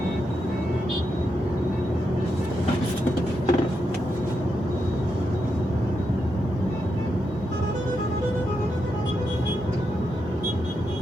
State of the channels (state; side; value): normal; both; correlation 0.84